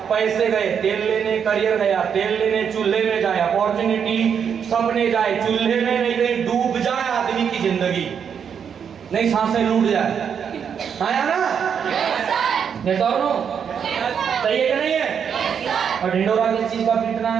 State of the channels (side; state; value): left; quieter; 7.4 dB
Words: पैसे गए तेल लेने, करियर गया तेल लेने, चूल्हे में जाए अपॉर्चुनिटी, सपने जाए चूल्हे में, नहीं कहीं डूब जाए आदमी की जिंदगी, नहीं सांसें लूट जाए। आया ना? ये तो सही है कि नहीं है? और ढिंडोरा किस चीज का पीटना